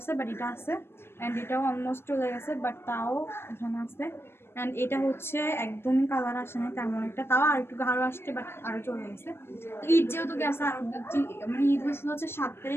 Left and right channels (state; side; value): late; right; 0.12 ms